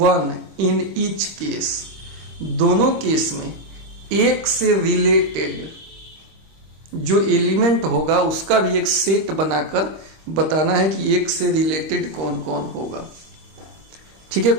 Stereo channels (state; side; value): late; left; 26 ms